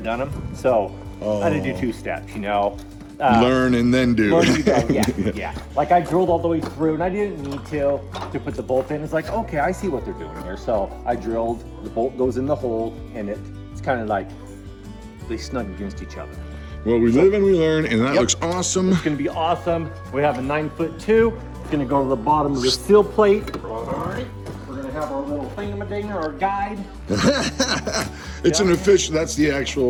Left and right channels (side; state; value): both; identical; correlation 1.00